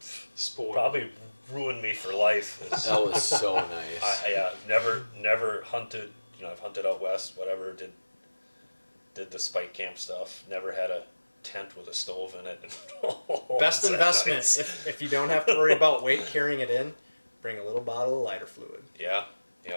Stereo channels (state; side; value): inverted; both; correlation -1.00